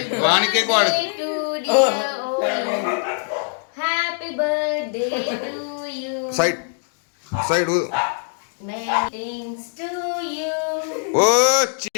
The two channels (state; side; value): silent; right; 64 dB below the other